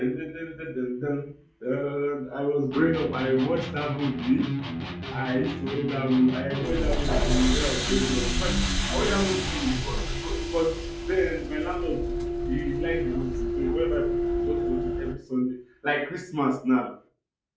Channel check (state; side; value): identical; both; correlation 1.00